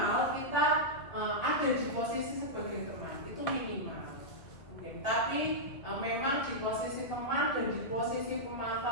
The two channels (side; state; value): right; late; 2.3 ms